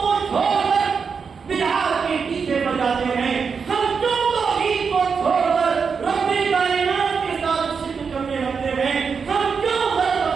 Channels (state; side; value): quieter; left; 5.7 dB